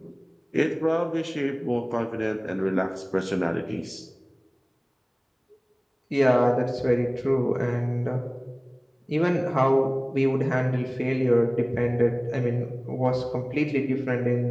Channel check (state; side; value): identical; both; correlation 1.00